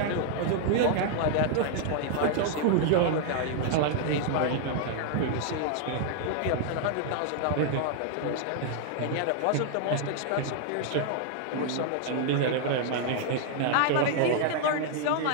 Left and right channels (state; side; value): different; both; correlation 0.00